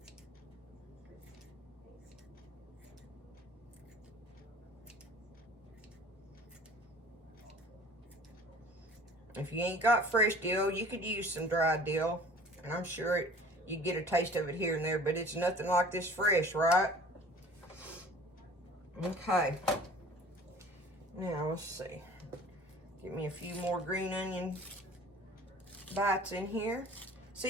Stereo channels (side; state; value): both; normal; correlation 0.47